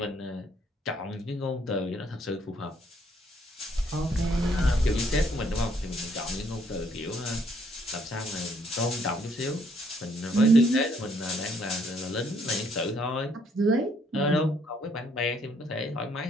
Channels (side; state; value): both; normal; correlation 0.67